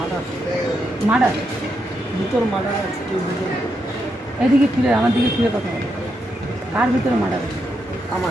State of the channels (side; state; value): both; normal; correlation 0.82